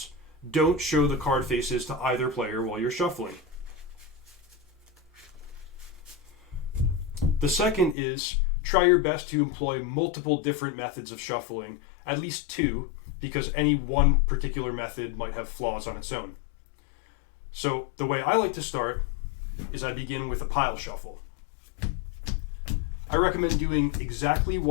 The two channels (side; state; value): right; drops out; at 8.0 s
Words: don't show the card faces to either player while you're shuffling. The second is try your best to employ multiple different methods of shuffling, at least two, because any one particular method might have flaws on its own. So the way I like to start is I begin with a pile shuffle. I recommend doing exactly